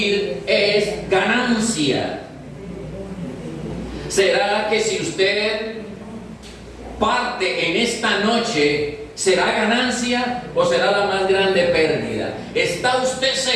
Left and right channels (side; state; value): both; identical; correlation 1.00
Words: es ganancia. ¿Será que si usted parte en esta noche, será ganancia o será la más grande pérdida? ¿Está usted